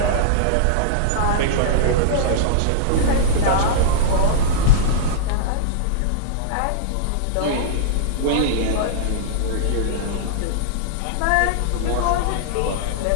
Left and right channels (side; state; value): both; different; correlation -0.02